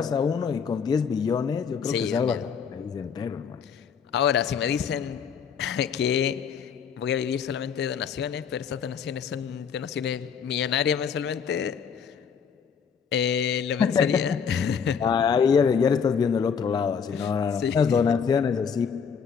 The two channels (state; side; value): quieter; right; 6.7 dB